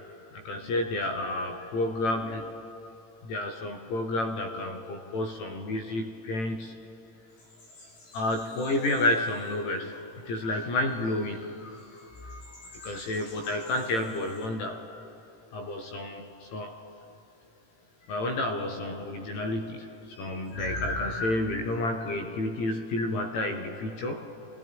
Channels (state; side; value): late; right; 18 ms